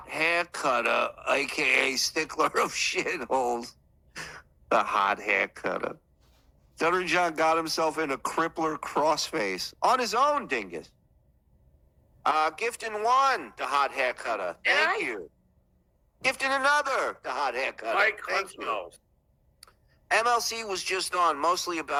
hair cutter, a.k.a. stickler of shitholes. The hot hair cutter. Stuttering John got himself in a crippler crossface. On his own, dingus. Gifting one, the hot hair cutter. Thank you. Gifting another, the hot hair cutter. Mike Thank you. Huntsville. MLC was just on, mostly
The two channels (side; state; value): both; identical; correlation 1.00